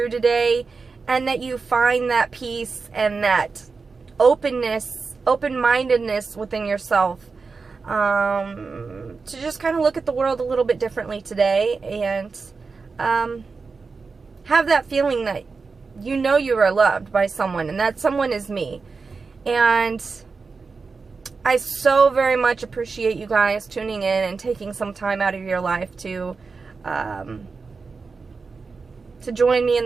today, and that you find that peace and that openness, open-mindedness within yourself, to just kind of look at the world a little bit differently today, and have that feeling that you know you are loved by someone, and that someone is me. And I so very much appreciate you guys tuning in and taking some time out of your life to join me in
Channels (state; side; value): quieter; left; 4.6 dB